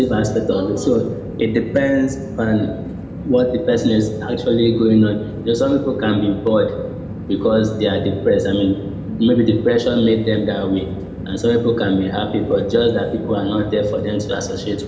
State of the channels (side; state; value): both; identical; correlation 1.00